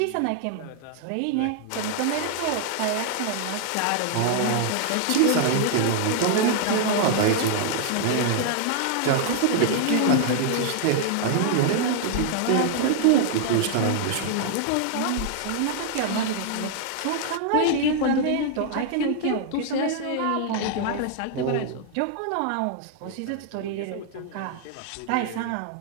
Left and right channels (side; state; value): both; different; correlation 0.00